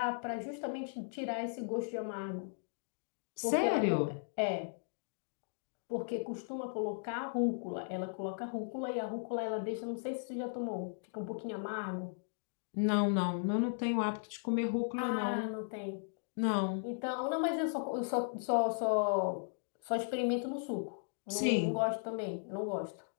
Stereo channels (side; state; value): right; silent; digital silence